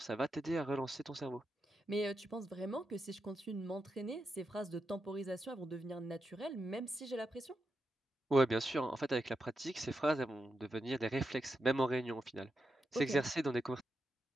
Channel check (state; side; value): normal; both; correlation 0.87